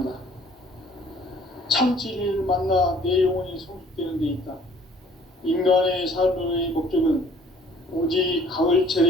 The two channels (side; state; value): both; normal; correlation 0.55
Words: 참 진리를 만나 내 영혼이 성숙되는 데 있다. 인간의 삶의 목적은 오직